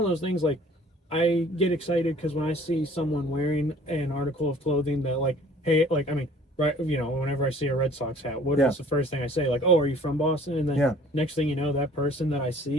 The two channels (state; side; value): normal; both; correlation 0.53